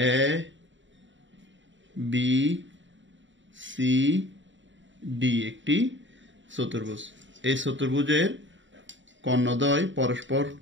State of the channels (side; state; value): left; late; 0.54 ms